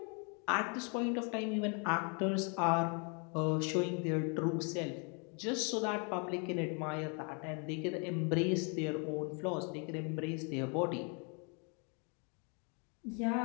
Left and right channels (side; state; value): right; quieter; 36.6 dB